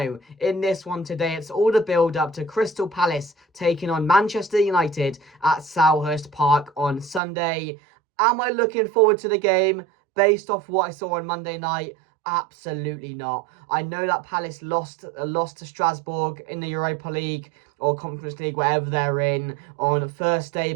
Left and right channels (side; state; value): left; drops out; at 7.2 s